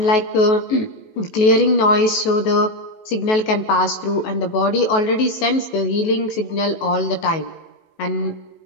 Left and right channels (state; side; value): late; right; 19 ms